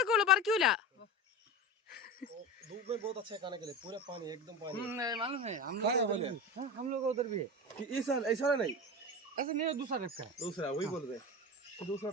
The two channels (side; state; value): both; normal; correlation 0.26